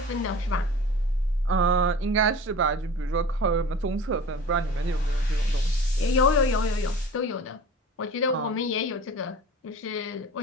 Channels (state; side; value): normal; both; correlation 0.39